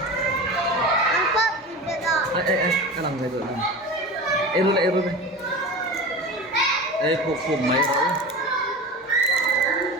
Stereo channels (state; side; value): normal; both; correlation 0.31